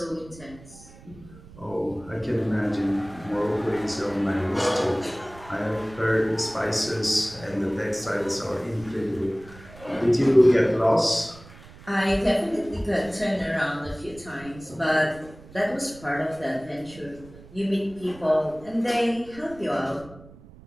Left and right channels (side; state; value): right; noise; rumble, 20 dB below the sound